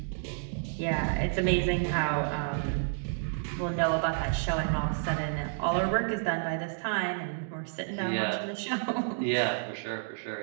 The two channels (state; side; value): silent; left; digital silence